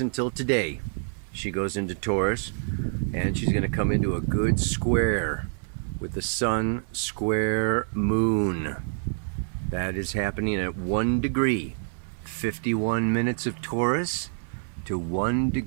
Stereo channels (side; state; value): left; silent; 60 dB below the other